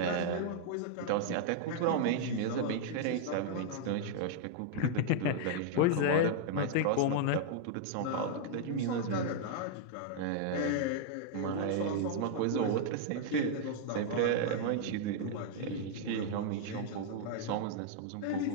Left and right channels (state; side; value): different; both; correlation -0.01